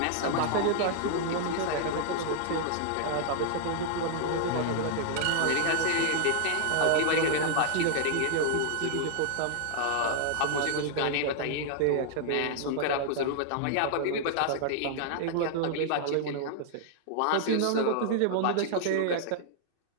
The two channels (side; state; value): both; different; correlation -0.01